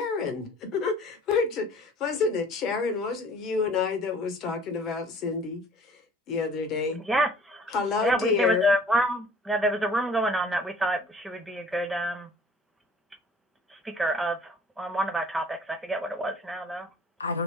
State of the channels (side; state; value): both; normal; correlation 0.51